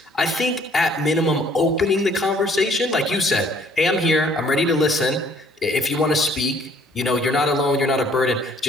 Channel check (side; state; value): both; normal; correlation 0.60